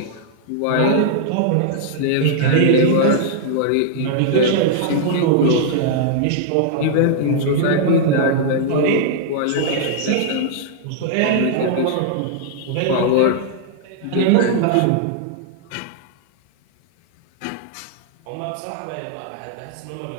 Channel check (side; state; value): both; different; correlation -0.01